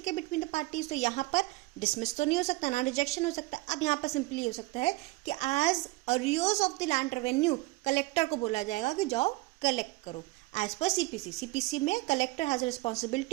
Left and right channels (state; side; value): quieter; left; 21.9 dB